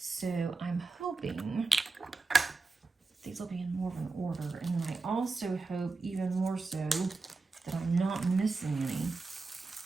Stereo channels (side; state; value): left; quieter; 3.9 dB